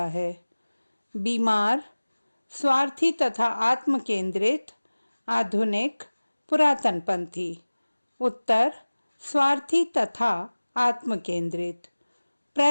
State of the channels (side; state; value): both; inverted; correlation -1.00